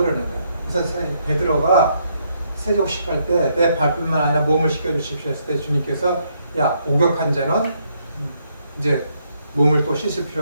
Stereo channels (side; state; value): both; inverted; correlation -0.74